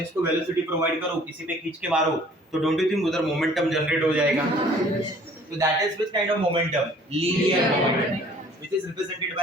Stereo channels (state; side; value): normal; both; correlation 0.54